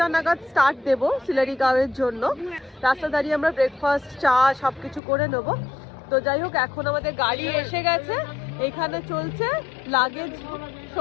নাগাদ স্টার্ট দেবো সিলারিগাঁওয়ের জন্য। রাস্তা দাঁড়িয়ে আমরা ব্রেকফাস্ট, চা সবকিছু করে নেব। তো যাই হোক, এখন আমাদের গাড়ি এসে গেছে, এখানে চলছে লাগেজ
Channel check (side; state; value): right; drops out; at 5.0 s